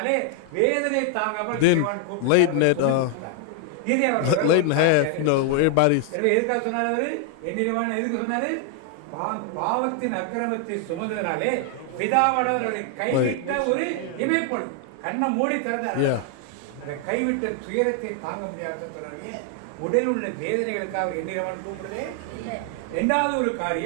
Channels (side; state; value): both; different; correlation 0.00